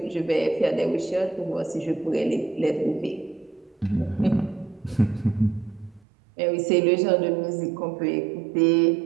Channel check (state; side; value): drops out; left; at 6.0 s